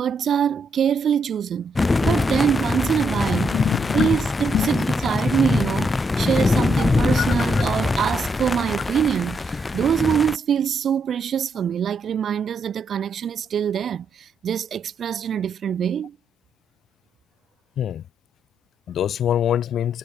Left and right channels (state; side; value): normal; both; correlation 0.78